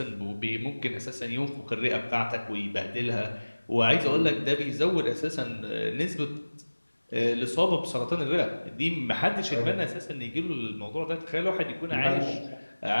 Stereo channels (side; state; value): both; inverted; correlation -1.00